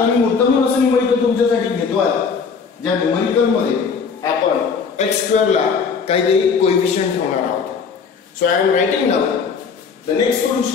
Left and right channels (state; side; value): quieter; right; 5.7 dB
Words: मी मुद्दामून असं न्यूमरिकल तुमच्यासाठी घेतो आहे ज्या न्यूमरिकल मध्ये आपण x² ला काहीतरी कोएफिशियंट ठेवणार आहोत so I am writing now the next